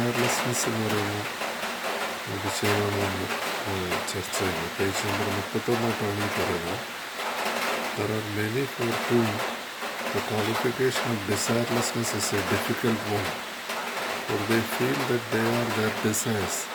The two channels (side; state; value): both; identical; correlation 1.00